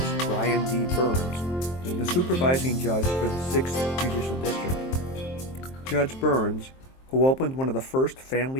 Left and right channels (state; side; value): late; right; 23 ms